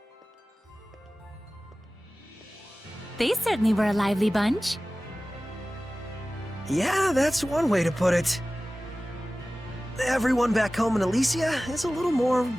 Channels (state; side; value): normal; both; correlation 0.97